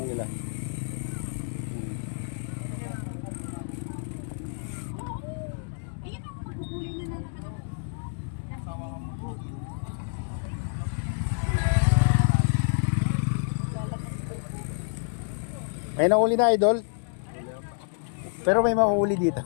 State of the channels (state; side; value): silent; right; digital silence